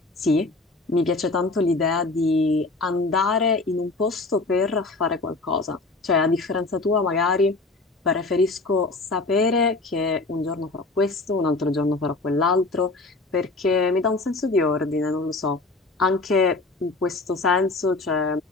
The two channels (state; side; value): quieter; right; 3.4 dB